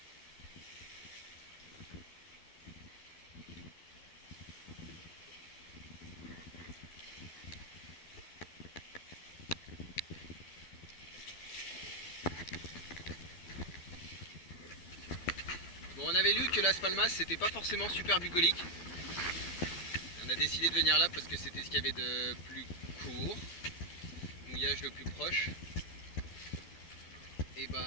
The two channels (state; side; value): late; right; 12 ms